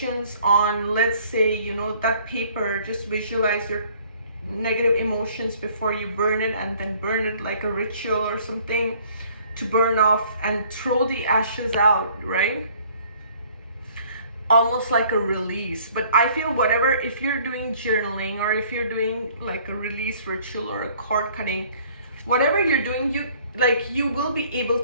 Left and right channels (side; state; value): both; inverted; correlation -0.57